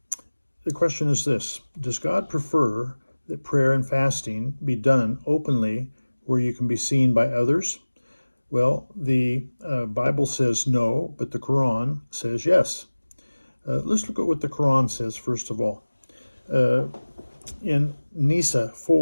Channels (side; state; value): both; inverted; correlation -1.00